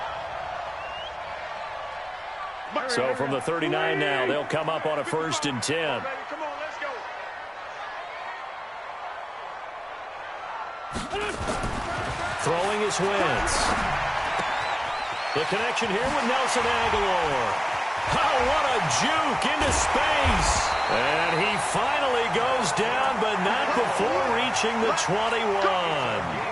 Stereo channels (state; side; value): identical; both; correlation 1.00